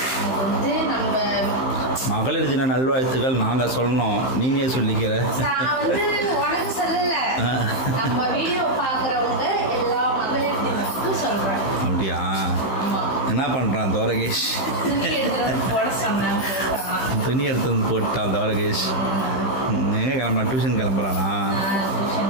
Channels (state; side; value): late; right; 15 ms